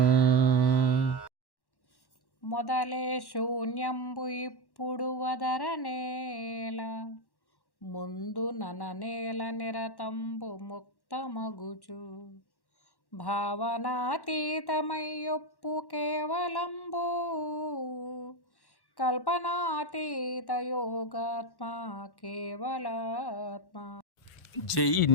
మొదలే శూన్యంబు ఇప్పుడు వదరనేల ముందు నననేల నిరతంబు ముక్తమగుచు భావనాతీతమయ్యొప్పు కేవలంబు కల్పనాతీత యోగాత్మ కేవలాత్మ. జై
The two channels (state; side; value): late; right; 1.1 ms